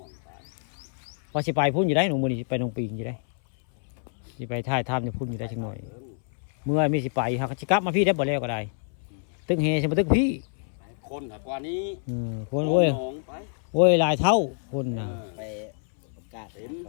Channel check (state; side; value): silent; right; 60 dB below the other